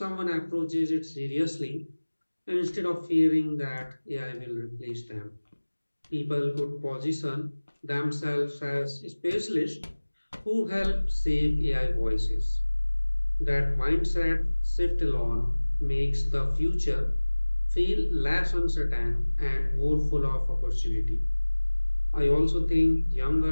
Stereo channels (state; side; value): inverted; both; correlation -1.00